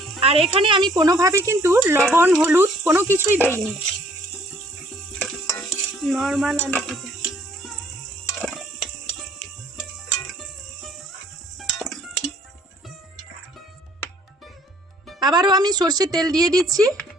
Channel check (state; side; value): normal; both; correlation 0.60